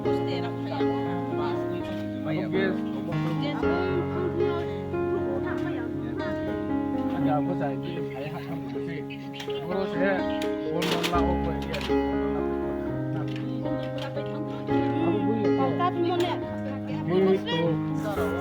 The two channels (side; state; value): both; identical; correlation 1.00